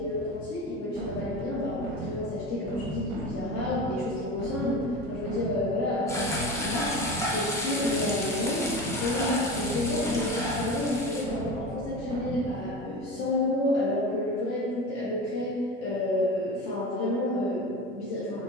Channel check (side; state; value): both; normal; correlation 0.29